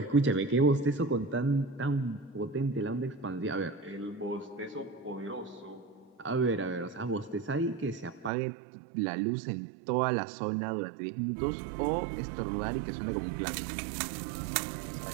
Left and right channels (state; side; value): drops out; left; at 8.3 s